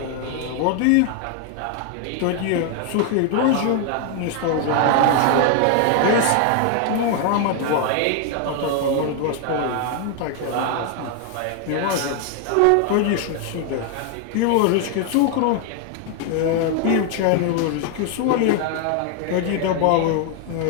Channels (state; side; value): different; both; correlation 0.01